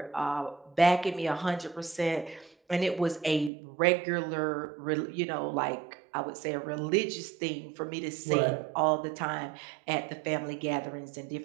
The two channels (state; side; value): drops out; left; at 3.5 s